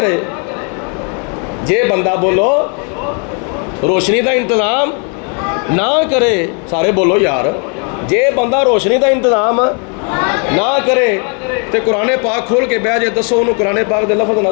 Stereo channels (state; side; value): quieter; right; 38.4 dB